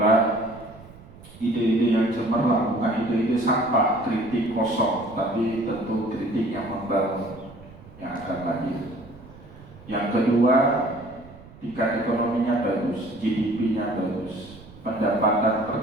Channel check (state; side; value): noise; right; rumble, 20 dB below the sound